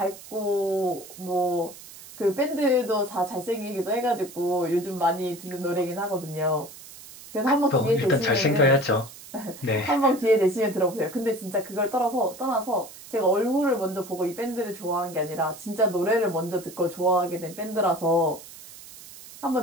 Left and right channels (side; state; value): right; noise; hiss, 17 dB below the sound